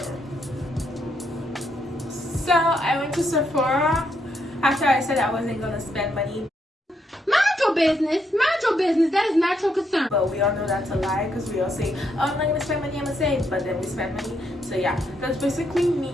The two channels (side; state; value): both; normal; correlation 0.77